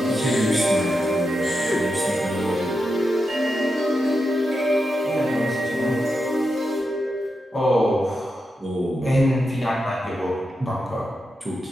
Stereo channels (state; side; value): normal; both; correlation 0.88